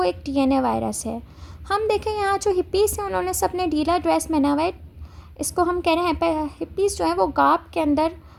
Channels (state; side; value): identical; both; correlation 1.00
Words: एक डीएनए वायरस है। हम देखें यहाँ जो हिप्पीज़ हैं उन्होंने सबने ढीला ड्रेस पहना हुआ है। इसको हम कह रहे हैं हिप्पीज़ जो है वो गाप के अंदर